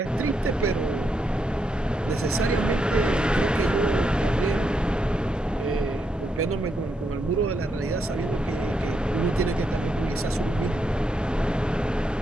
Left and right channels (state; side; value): normal; both; correlation 0.80